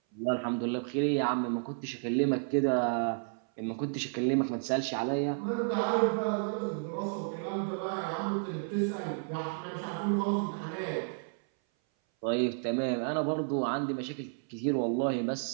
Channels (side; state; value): left; silent; 57 dB below the other